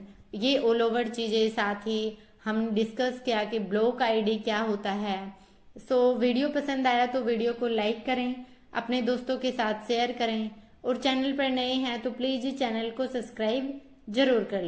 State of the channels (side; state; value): both; identical; correlation 1.00